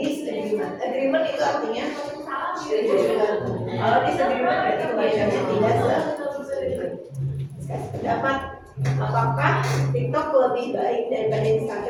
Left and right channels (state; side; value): identical; both; correlation 1.00